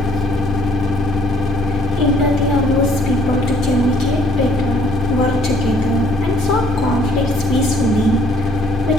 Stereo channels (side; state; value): both; normal; correlation 0.61